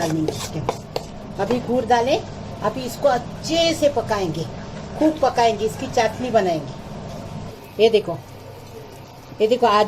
इसके। अभी गुड़ डालें, अभी इसको अच्छे से पकाएंगे, खूब पकाएंगे, इसकी चाशनी बनाएंगे। ये देखो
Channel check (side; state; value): both; identical; correlation 1.00